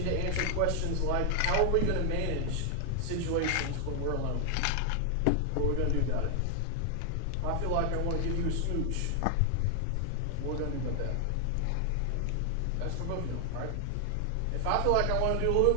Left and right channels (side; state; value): both; different; correlation 0.00